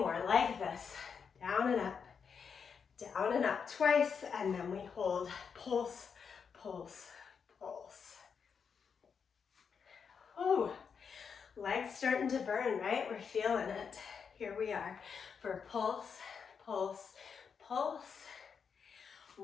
like this. Down and up twice, and then we hold. Pulse, pulse, pulse. Oh, legs starting to burn, right? We're feeling it. Here we are for pulse, pulse, pulse.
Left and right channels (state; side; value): quieter; right; 6.4 dB